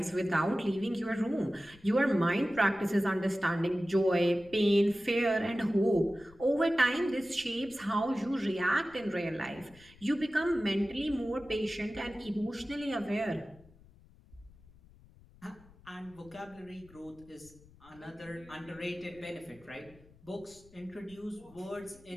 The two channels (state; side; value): noise; left; rumble, 25 dB below the sound